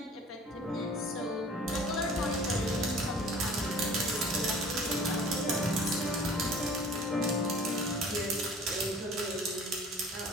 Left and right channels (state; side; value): normal; both; correlation 0.47